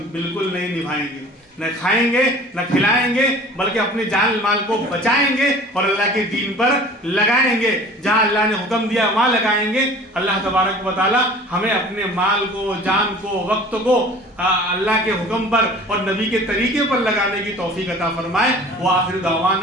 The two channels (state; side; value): normal; both; correlation 0.45